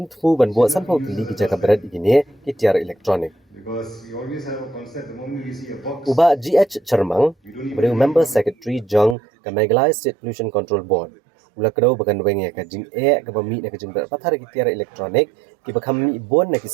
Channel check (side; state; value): left; drops out; at 9.2 s